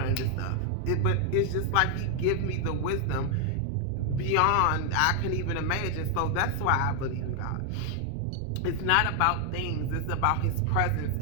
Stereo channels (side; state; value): both; different; correlation 0.00